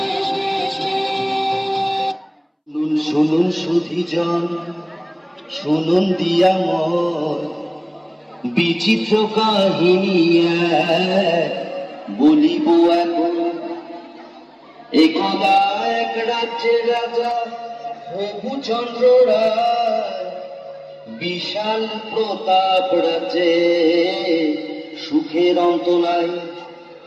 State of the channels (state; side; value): identical; both; correlation 1.00